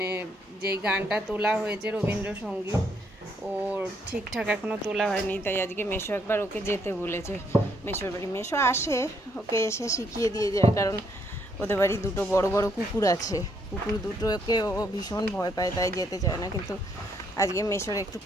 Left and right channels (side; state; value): both; normal; correlation 0.72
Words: যেই গানটা তোলা হয়েছে রবীন্দ্রসঙ্গীত, ওর ঠিকঠাক এখনও তোলা হয়নি, তাই আজকে মেশো একবার ওকে যেতে বলেছে মেশোর বাড়ি। মেশো আসে, ওকে এসে শিখিয়ে দিয়ে যায়, কারণ ওদের বাড়ি দুটো বড় বড় কুকুর আছে, কুকুর দুটোকে ও ভীষণ ভয় পায়, তাই যেতে চায় না। কিন্তু আজকে মেশোর একটু